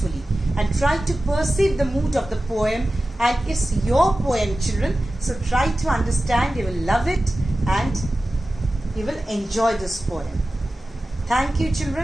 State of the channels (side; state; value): both; normal; correlation 0.95